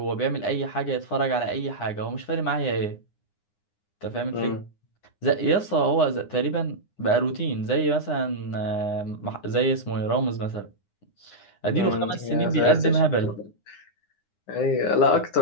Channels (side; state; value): right; late; 9.8 ms